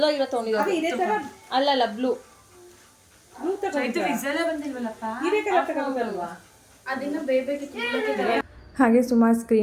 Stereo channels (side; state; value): both; identical; correlation 1.00